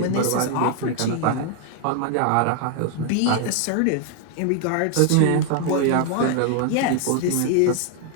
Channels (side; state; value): both; different; correlation 0.00